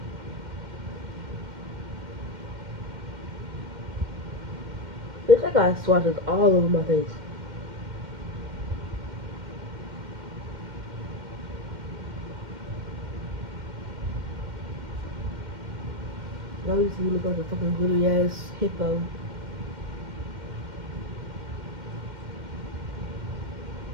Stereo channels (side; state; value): left; late; 2.1 ms